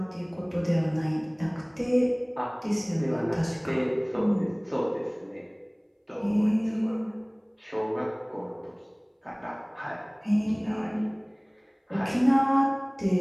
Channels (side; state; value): both; identical; correlation 1.00